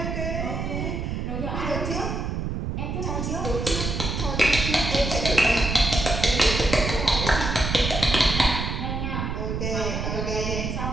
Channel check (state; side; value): noise; right; rumble, 2 dB below the sound